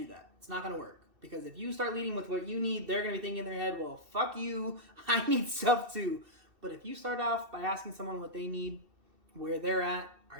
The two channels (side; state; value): left; late; 2.7 ms